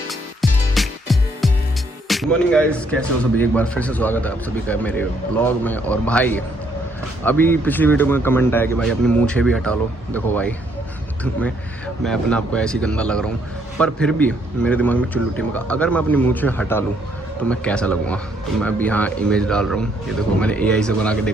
गुड मॉर्निंग गाइस, कैसे हो सभी? एक बार फिर से स्वागत है आप सभी का मेरे ब्लॉग में। और भाई अभी पिछली वीडियो में कमेंट आया कि भाई अपनी मूंछें भी हटा लो। देखो भाई मैं अपने आप को ऐसी गंदा लग रहा हूँ, पर फिर भी मेरे दिमाग में चुल्लुटी में अगर मैं अपनी मूंछें हटा लूँ तो मैं कैसा लगूंगा। तो मैं अभी यहाँ इमेज डाल रहा हूँ, ये देखो मैंने AI से बना के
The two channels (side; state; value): both; normal; correlation 0.69